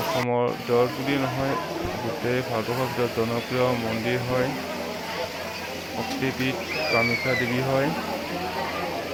অসমৰ ভিতৰত বুলি নহয়, গোটেই ভাৰতবৰ্ষৰ ভিতৰত জনপ্ৰিয় মন্দিৰ হয়। শক্তিপীঠ কামাখ্যা দেৱী হয়।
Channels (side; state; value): both; identical; correlation 1.00